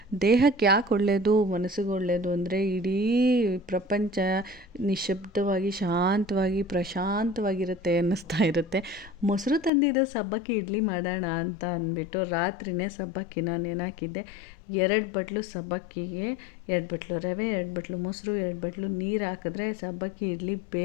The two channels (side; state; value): right; drops out; at 9.7 s